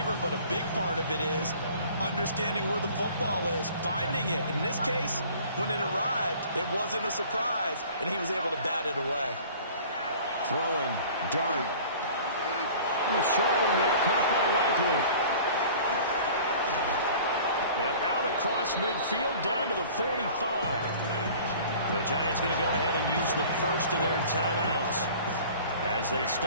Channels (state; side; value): inverted; both; correlation -0.46